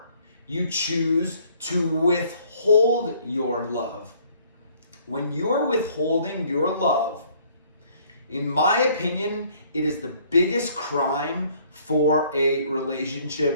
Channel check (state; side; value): inverted; both; correlation -0.60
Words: you choose to withhold your love. When you're withholding your love, in my opinion, it is the biggest crime for a